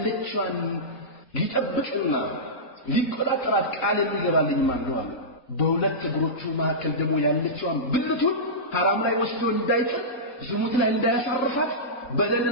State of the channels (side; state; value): right; late; 4.1 ms